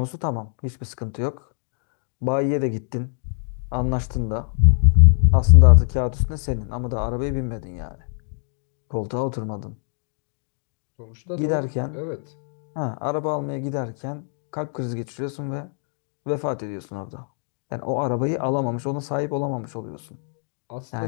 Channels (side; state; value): right; silent; digital silence